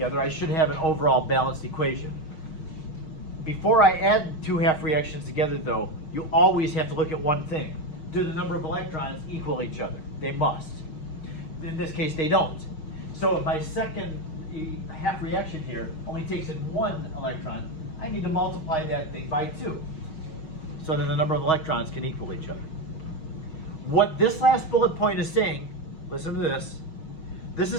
I should have an overall balanced equation. Before I add 2 half reactions together though, you always have to look at one thing. Do the number of electrons equal each other? They must. In this case, they don't. So if my second half reaction here only takes in 1 electron, I need to multiply that thing by 2. So then the number of electrons can equal each other. What this last bullet point is saying, listen to this. This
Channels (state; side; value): late; right; 6.3 ms